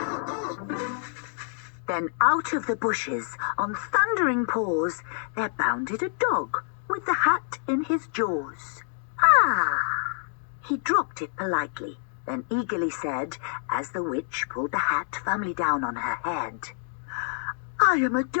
Then out of the bushes, on thundering paws, there bounded a dog with the hat in his jaws. Ah! He dropped it politely, then eagerly said, as the witch pulled the hat firmly down on her head, "I am a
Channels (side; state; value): right; silent; 60 dB below the other